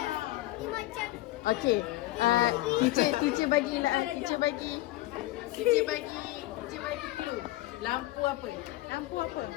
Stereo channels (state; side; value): quieter; right; 17.4 dB